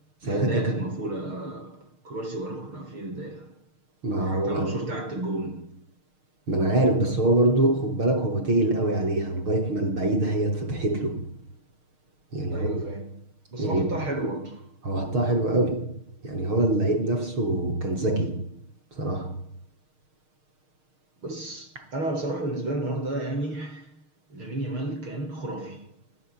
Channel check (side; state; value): left; late; 6.5 ms